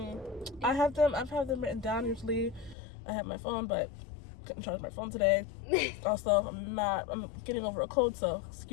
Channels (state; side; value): drops out; right; at 2.8 s